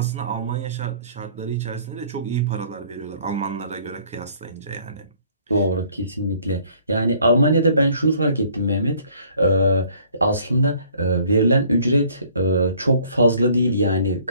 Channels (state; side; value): inverted; both; correlation -0.58